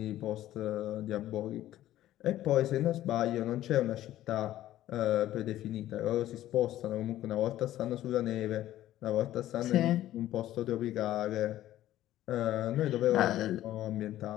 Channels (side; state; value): right; quieter; 13.8 dB